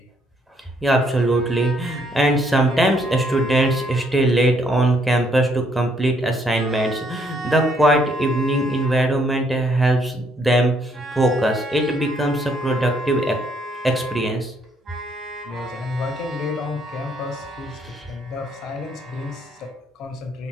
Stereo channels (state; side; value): normal; both; correlation 0.69